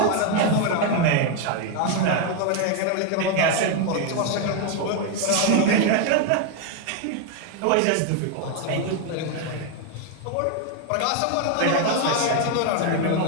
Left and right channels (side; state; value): both; different; correlation 0.01